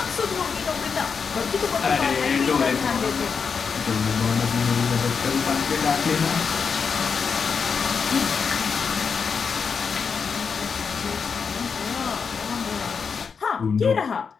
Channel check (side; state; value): right; quieter; 5.8 dB